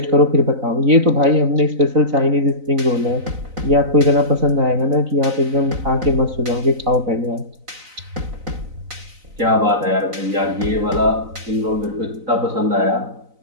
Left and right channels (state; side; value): late; left; 4.0 ms